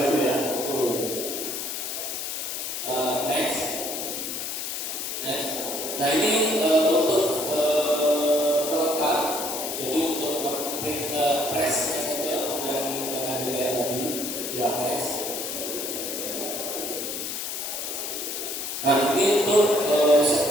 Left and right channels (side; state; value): left; noise; hiss, 4 dB below the sound